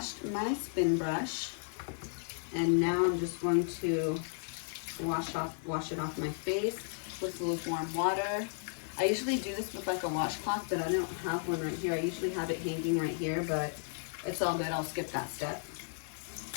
my spin brush and now I'm just going to wash it off my face with lukewarm water. I usually do this with like a washcloth, but I don't have one right here. I usually have it hanging right here, but it's all good. I'll skip that step.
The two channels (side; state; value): right; silent; digital silence